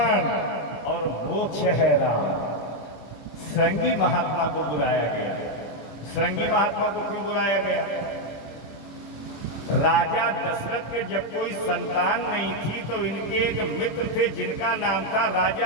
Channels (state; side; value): late; right; 26 ms